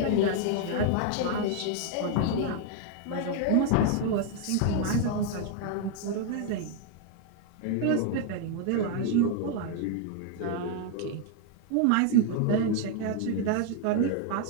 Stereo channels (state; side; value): different; both; correlation 0.01